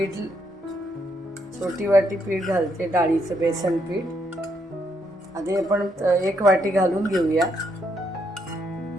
छोटी वाटी पीठ घालते, डाळीचं बेसन पीठ। आधी आपण एक वाटी घालून घेऊया,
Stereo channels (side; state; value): both; normal; correlation 0.75